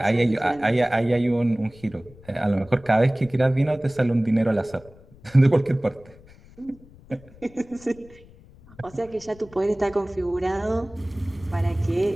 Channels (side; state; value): left; noise; rumble, 24 dB below the sound